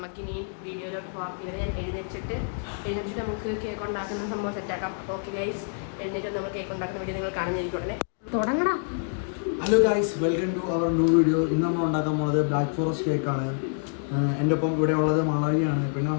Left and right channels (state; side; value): silent; right; digital silence